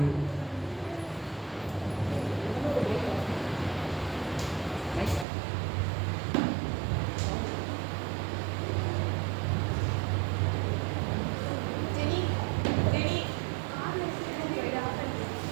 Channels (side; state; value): left; drops out; at 5.2 s